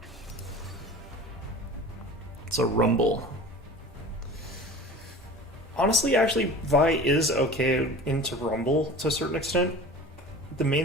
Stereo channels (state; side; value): normal; both; correlation 0.39